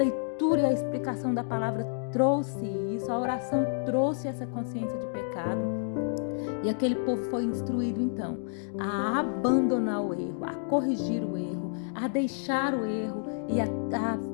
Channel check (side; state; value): right; silent; digital silence